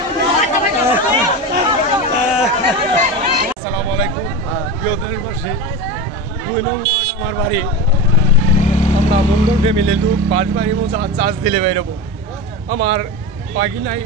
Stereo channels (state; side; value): normal; both; correlation 0.23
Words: আসসালামু আলাইকুম প্রিয় দেশবাসী, 2 নং ওয়ার্ড আমার বাড়ি। আমরা মঙ্গল ফ্যামিলির লোক বাড়ি মোজা চার্জ দিলে বেরোবো। আমার পাগিনাই